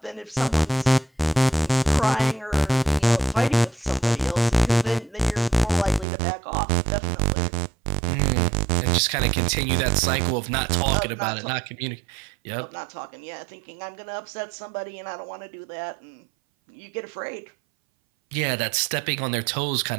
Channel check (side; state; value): left; drops out; at 6.1 s